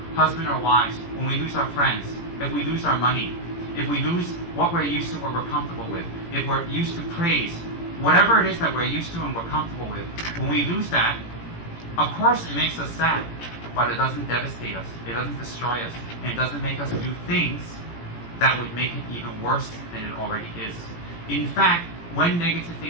husband or wives, when we lose our friends, if we lose our money, if we lose what we're used to, what we're comfortable with, if we're used to praise, whatever it is that we're used to and we're comfortable with, when we lose that, of course it makes us sad, but it doesn't devastate us, it doesn't destroy us, and it doesn't make us do things that would make it even worse than it already is. In fact, when negative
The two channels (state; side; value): late; right; 17 ms